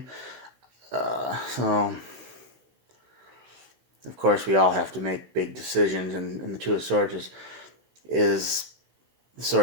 So, of course, we all have to make big decisions, and the Two of Swords is the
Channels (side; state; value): left; late; 16 ms